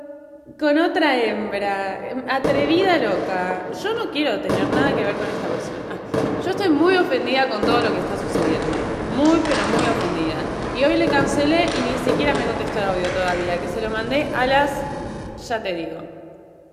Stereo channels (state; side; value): identical; both; correlation 1.00